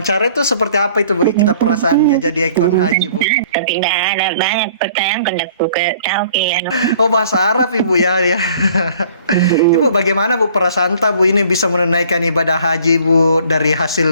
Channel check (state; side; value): inverted; both; correlation -0.54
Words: itu seperti apa itu Bu? Kita perasaannya jadi ikon haji Bu. Tapi tidak ada banyak pertanyaan kan aku tahu ke Oh, bahasa Arab Ibu ya ya. Ibu bagaimana Bu perasaan Bu ini bisa menunaikan ibadah haji Bu dari